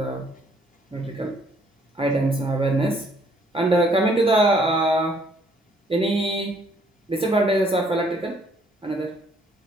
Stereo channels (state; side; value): normal; both; correlation 0.65